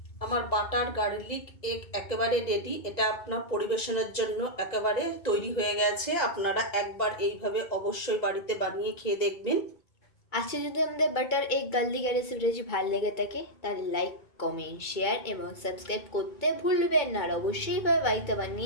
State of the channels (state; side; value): late; right; 1.9 ms